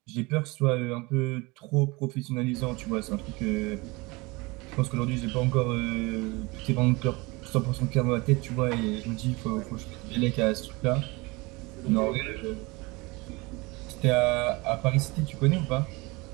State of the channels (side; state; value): left; quieter; 24.6 dB